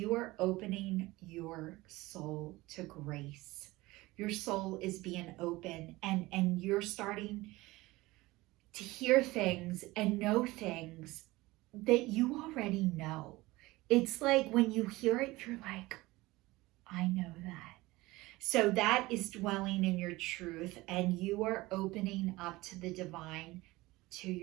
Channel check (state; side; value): quieter; left; 20.1 dB